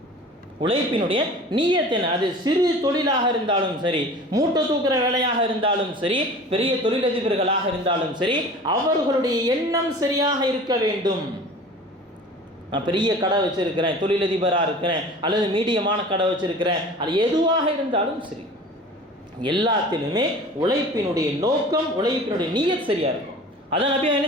உழைப்பினுடைய நியத்து என்ன, அது சிறு தொழிலாக இருந்தாலும் சரி, மூட்டை தூக்குற வேலையாக இருந்தாலும் சரி, பெரிய தொழிலதிபர்களாக இருந்தாலும் சரி, அவர்களுடைய எண்ணம் சரியாக இருக்க வேண்டும். நான் பெரிய கடை வச்சிருக்கிறேன், தொழிலதிபராக இருக்கிறேன், அல்லது மீடியமான கடை வச்சிருக்கிறேன், அது எதுவாக இருந்தாலும் சரி, எல்லாத்திலுமே உழைப்பினுடைய நோக்கம், உழைப்பினுடைய நியத் சரியா இருக்கும். அதான் நபி என்ன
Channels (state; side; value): normal; both; correlation 0.41